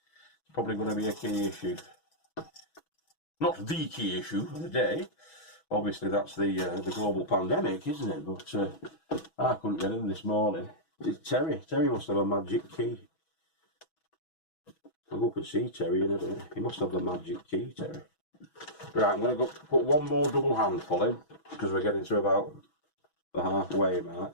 probably going to be a key issue. Not the key issue of the day. Obviously that's the global pandemic, isn't it? But I couldn't get in this morning. It's Terry. Terry must have a magic key. I'll go up and see Terry in a bit. He must have the magic key, Terry. Right, I'm going to go put one more double handful in, because we're getting to about the halfway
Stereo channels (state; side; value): late; right; 6.2 ms